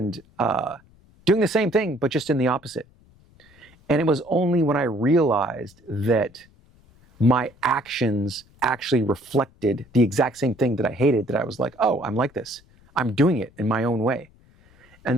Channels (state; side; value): noise; left; rumble, 29 dB below the sound